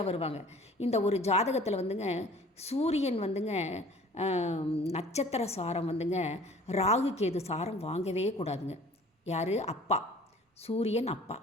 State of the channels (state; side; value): normal; both; correlation 0.49